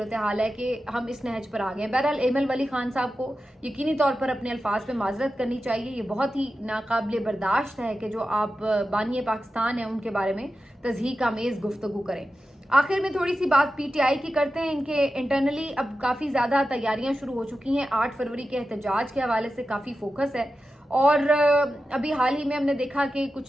ہے کہ ہم اس نہج پر آ گئے ہیں. بہرحال ایمل ولی خان صاحب کو یقینی طور پر اپنے الفاظ پہ معذرت کرنی چاہیے. یہ بہت ہی ناقابل برداشت ہے کہ جو آپ بانی پاکستان ہیں ان کے بارے میں تضحیک آمیز گفتگو کریں. آخر میں تھوڑی سی بات پی ٹی آئی کی کرتے ہیں. ان کے انٹرنلی اب کافی زیادہ تیاریاں شروع ہو چکی ہیں. 8 فروری کے احتجاج کے حوالے سے کافی فوکس ہے, اور ابھی حال ہی میں ہم نے دیکھا کہ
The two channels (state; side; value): normal; both; correlation 0.92